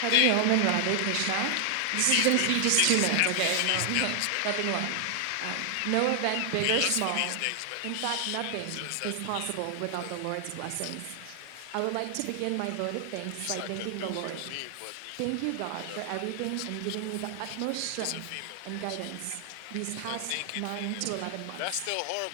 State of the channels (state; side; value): different; both; correlation 0.00